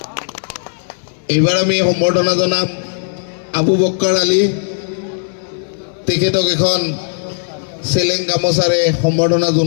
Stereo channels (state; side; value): silent; right; 69 dB below the other